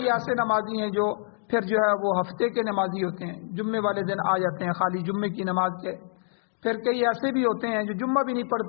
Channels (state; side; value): silent; right; digital silence